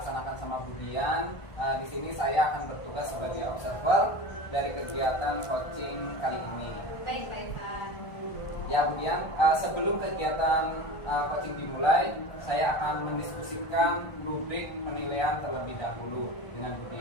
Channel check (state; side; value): late; right; 1.4 ms